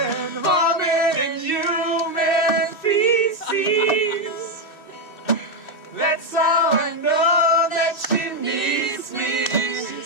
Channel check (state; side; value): late; right; 2.6 ms